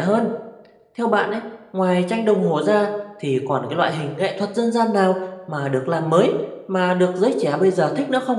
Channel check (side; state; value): both; identical; correlation 1.00